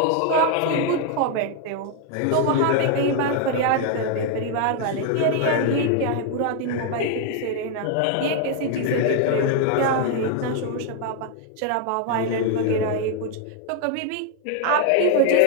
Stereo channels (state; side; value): different; both; correlation 0.00